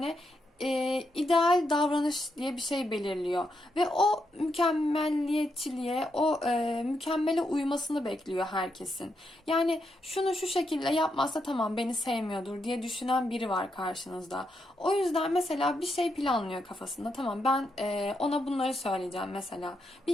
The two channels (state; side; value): normal; both; correlation 0.82